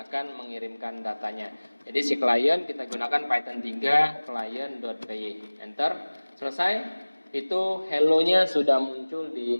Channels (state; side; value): inverted; both; correlation -1.00